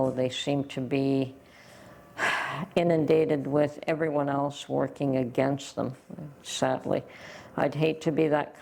they seem to be inundated with everyone else working against them, sadly. I'd hate to be that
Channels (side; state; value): both; identical; correlation 1.00